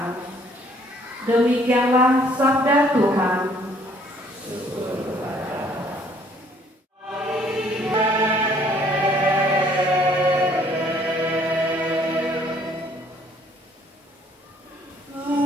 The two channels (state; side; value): normal; both; correlation 0.61